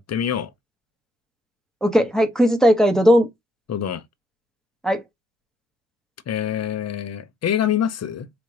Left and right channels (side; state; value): both; normal; correlation 0.73